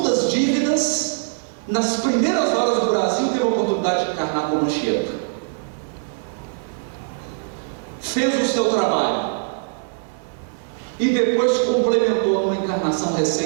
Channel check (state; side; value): silent; left; 64 dB below the other